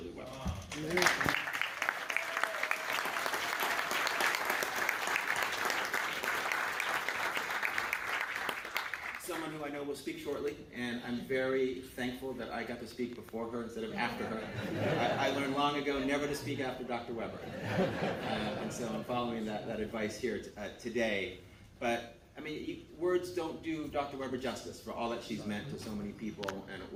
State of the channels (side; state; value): both; identical; correlation 1.00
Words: Weber. Someone who I know will speak shortly, and I'm very thankful that I got to speak before her instead of after her. I learned long ago never to speak after Dr. Weber, and so I'm following that advice here today. But I mean, words don't do Dr. Weber justice for all that she's meant to so many people and